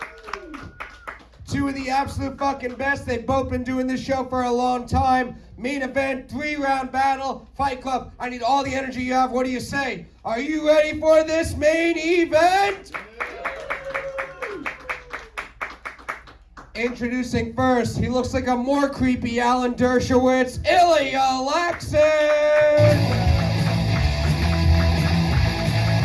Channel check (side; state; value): both; identical; correlation 1.00